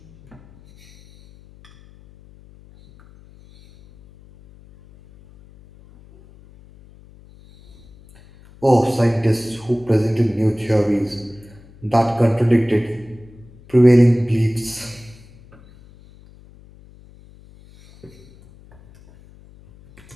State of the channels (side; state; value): left; noise; hum, 25 dB below the sound